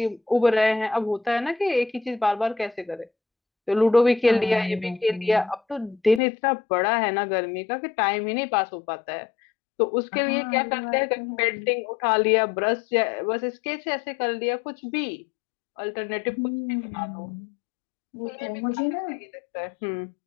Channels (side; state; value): right; drops out; at 6.2 s